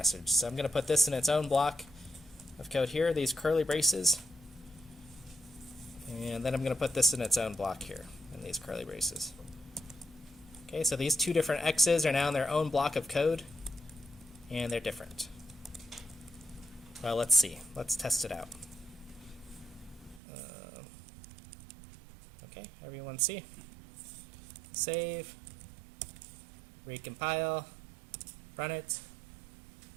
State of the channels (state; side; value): drops out; left; at 20.2 s